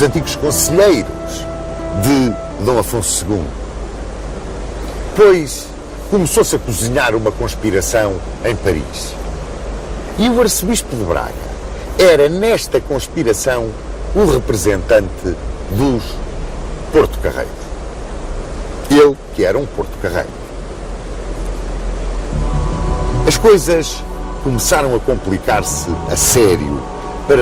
antigos conselheiros de Dom Afonso II. Pois começou-se a cozinhar uma conspiração em Paris. E o arcebispo de Braga era, nesta conspiração, o representante dos Porto-Carreiros. Ele que era um Porto-Carreiro. As coisas começaram a complicar-se a sério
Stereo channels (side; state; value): both; identical; correlation 1.00